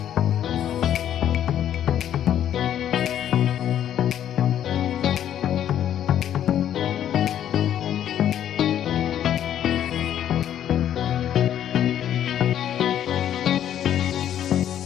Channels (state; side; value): quieter; right; 10.6 dB